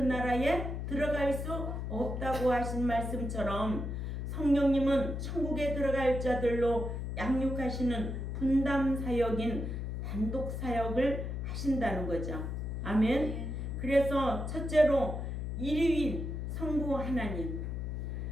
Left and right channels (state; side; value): noise; left; hum, 4 dB below the sound